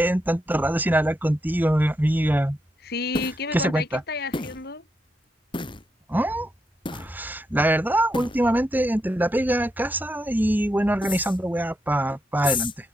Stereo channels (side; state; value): both; normal; correlation 0.82